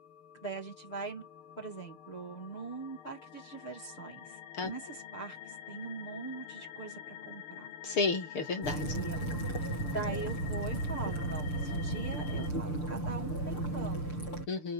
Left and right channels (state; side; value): late; right; 6.7 ms